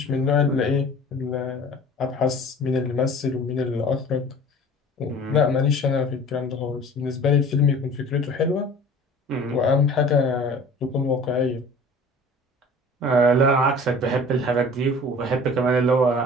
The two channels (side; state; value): both; normal; correlation 0.44